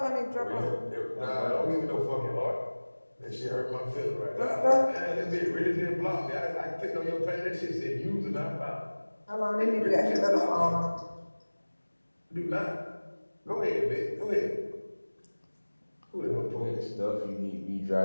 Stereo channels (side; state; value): both; inverted; correlation -1.00